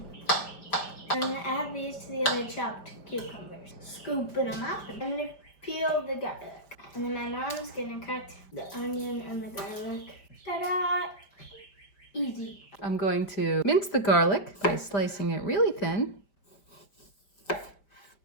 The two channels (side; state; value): right; late; 5.1 ms